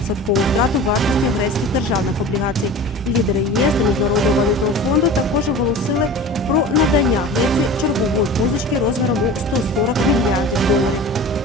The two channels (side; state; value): both; normal; correlation 0.37